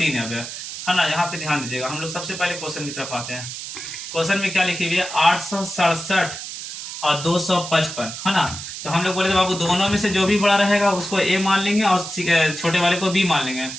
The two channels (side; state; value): right; noise; hiss, 9 dB below the sound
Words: है ना। यहाँ पे ध्यान दीजिएगा। हम लोग सबसे पहले क्वेश्चन की तरफ आते हैं। क्वेश्चन में क्या लिखी हुई है, 867 और 255, है ना। तो हम लोग बोले थे बाबू दोनों में से जो भी बड़ा रहेगा उसको ए मान लेंगे और छोटे वाले को बी मान लेंगे।